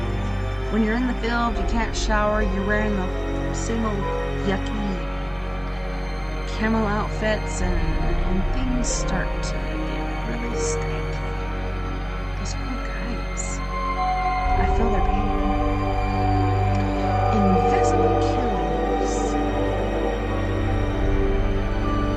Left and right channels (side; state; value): both; identical; correlation 1.00